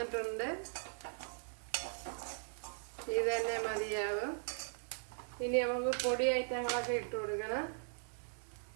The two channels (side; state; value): left; silent; 52 dB below the other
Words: ഇത് തന്നെ മതിയാവും. ഇനി നമുക്ക് പൊടി ഐറ്റങ്ങളൊക്കെ ഇട്ട് കൊടുക്കണം.